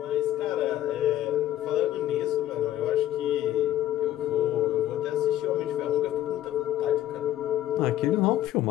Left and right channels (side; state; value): right; quieter; 13.2 dB